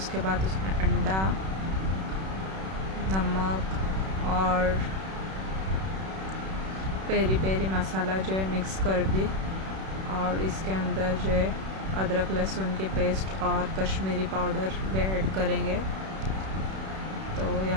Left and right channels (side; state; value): left; late; 31 ms